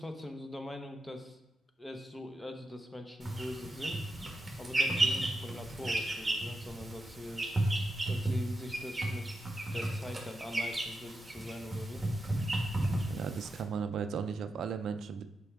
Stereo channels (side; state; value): both; normal; correlation 0.88